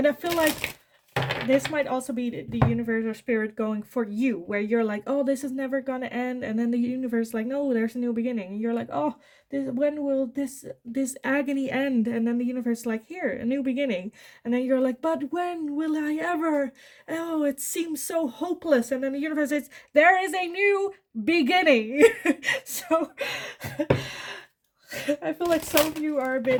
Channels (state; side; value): identical; both; correlation 1.00